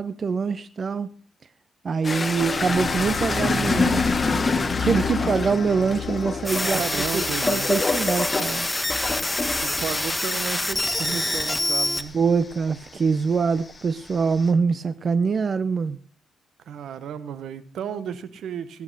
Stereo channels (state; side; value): normal; both; correlation 0.86